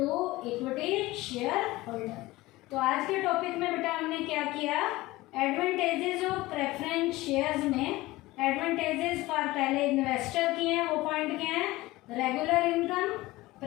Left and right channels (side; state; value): right; quieter; 19.1 dB